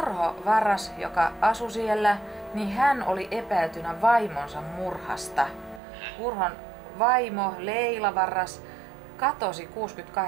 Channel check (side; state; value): left; drops out; at 5.8 s